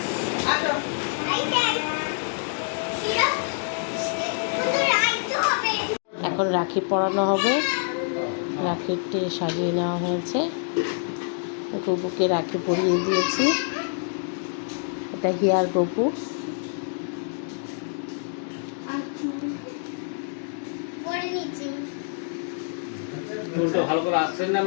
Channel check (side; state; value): right; silent; digital silence